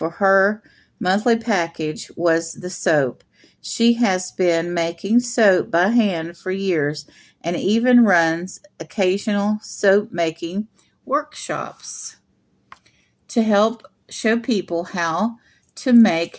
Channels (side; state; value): both; identical; correlation 1.00